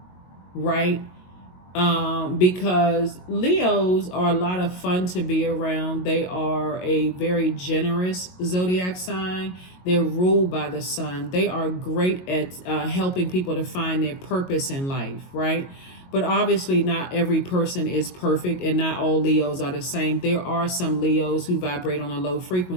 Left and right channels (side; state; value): right; late; 22 ms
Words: right? Because Leos are a lot of fun to be around. They are a very generous zodiac sign. They're ruled by the sun. They are great at helping people to find their purpose in life, right? But obviously not every person is perfect, and not all Leos are the same. There are some Leos who vibrate on a low